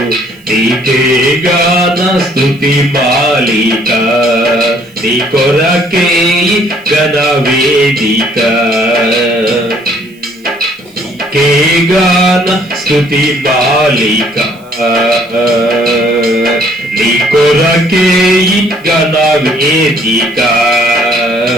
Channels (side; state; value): right; noise; hiss, 30 dB below the sound